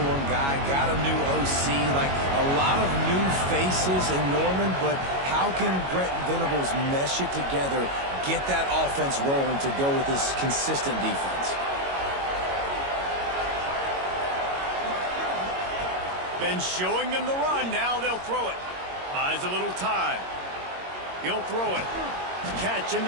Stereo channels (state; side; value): late; left; 22 ms